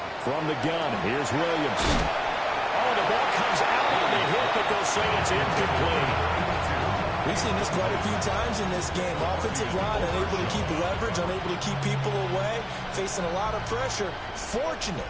From the gun, here's Williams. Oh, the ball comes out on the hit, but they'll say it's incomplete. We've seen this quite a few times in this game. Offensive line unable to keep leverage, unable to keep people away, facing a lot of pressure.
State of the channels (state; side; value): identical; both; correlation 1.00